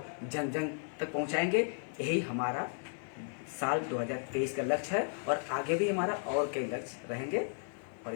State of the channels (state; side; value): silent; right; 55 dB below the other